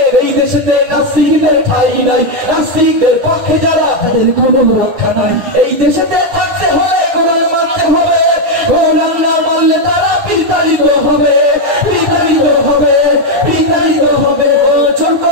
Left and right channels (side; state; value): left; late; 10 ms